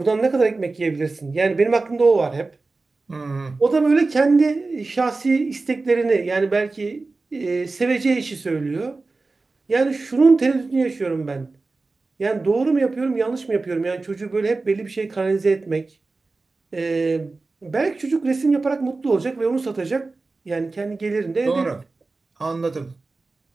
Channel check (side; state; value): left; quieter; 3.6 dB